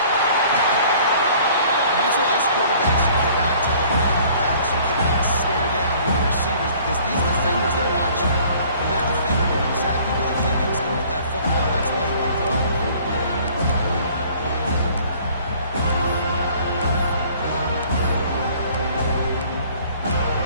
That's why as quarterbacks, you cannot tell them what to pass. You cannot stare down your receivers because these defenders, they're watching. And that defender knew exactly where the QB was going with that football. That's why he picked it up.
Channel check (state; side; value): inverted; both; correlation -0.54